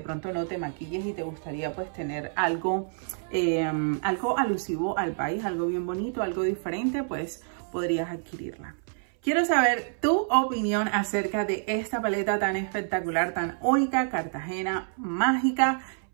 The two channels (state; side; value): silent; left; 59 dB below the other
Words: no te maquilles y te gustaría pues tener algo alusivo al país, algo bien bonito, algo diferente, pues podrías adquirirla. Quiero saber tu opinión acerca de esta paleta tan espectacular, tan única, Cartagena Mágica,